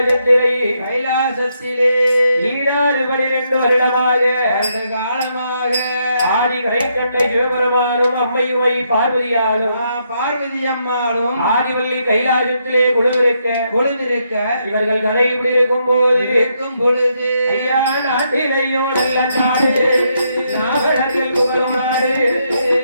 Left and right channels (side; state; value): both; inverted; correlation -0.77